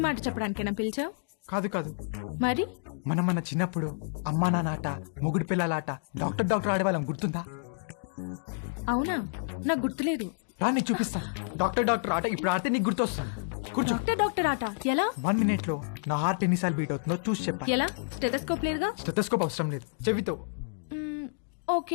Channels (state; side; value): silent; right; digital silence